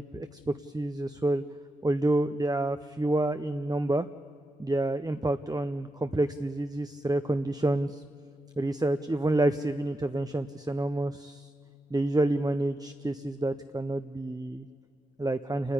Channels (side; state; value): both; normal; correlation 0.87